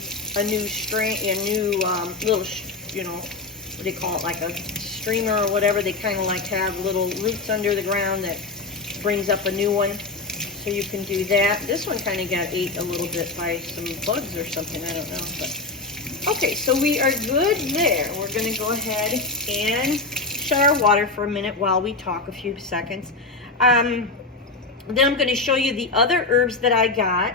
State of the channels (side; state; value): right; quieter; 3.6 dB